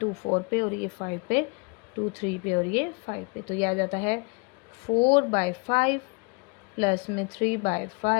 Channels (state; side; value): quieter; right; 32.0 dB